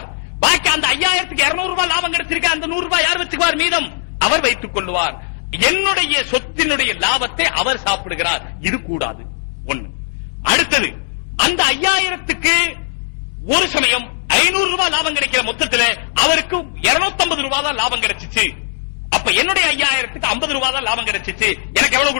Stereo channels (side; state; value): right; silent; digital silence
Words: பாக்கி அந்த 5000க்கு 200 ரூபாய் லாபம் கிடைச்சிருக்க, அந்த 100 ரூபாய் யார் வச்சுக்குவார்? மீதம் அவர் வைத்துக் கொள்வார். என்னுடைய சொத்தினுடைய லாபத்தை அவர் சாப்பிடுகிறார். இது கூடாது. ஒண்ணு. அடுத்தது, அந்த 5000க்கு ஒரு சமயம் 500 ரூபாய் லாபம் கிடைக்கிற மொத்தத்தில் அவருக்கு 250 ரூபாய் தான் லாபம் கிடைச்சிச்சு. அப்ப என்னுடைய 5000க்கு 50 ரூபாய் தான் லாபம் கிடைச்சிச்சு. எனக்கு எவ்வளவு